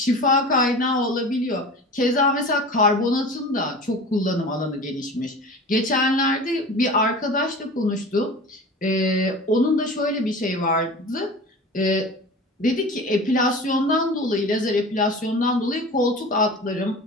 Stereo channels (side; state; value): both; normal; correlation 0.36